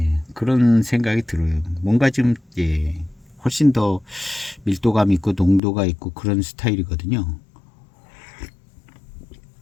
그런 생각이 들어요. 뭔가 좀 예, 훨씬 더 밀도감 있고 농도가 있고 그런 스타일이거든요.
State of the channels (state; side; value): drops out; right; at 5.6 s